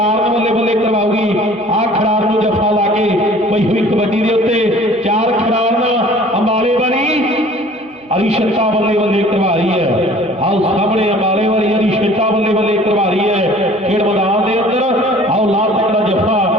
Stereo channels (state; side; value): normal; both; correlation 0.50